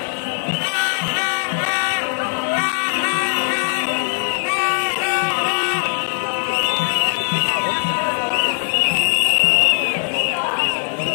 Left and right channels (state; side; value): silent; right; digital silence